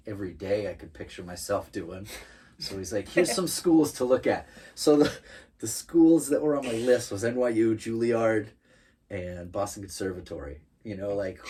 every day I could picture myself doing. So he's like, here's some schools to look at. So the schools that were on my list was NYU, Juilliard, and Boston Conservatory. You know, like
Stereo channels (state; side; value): identical; both; correlation 1.00